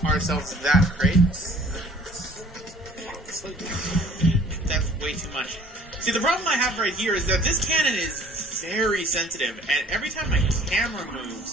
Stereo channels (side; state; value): both; normal; correlation 0.53